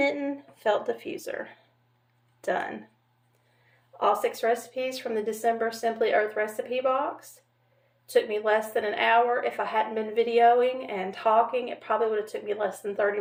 Felt Diffuser. Done. All 6 recipes from the December Simply Earth recipe box. Took me less than an hour. If I hadn't been videoing and talking, it probably would have took me less than 30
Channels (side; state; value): both; identical; correlation 1.00